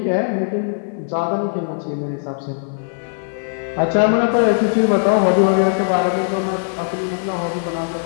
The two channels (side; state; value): right; silent; 55 dB below the other